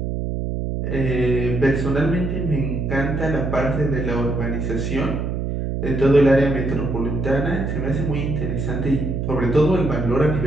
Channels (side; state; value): right; noise; hum, 2 dB below the sound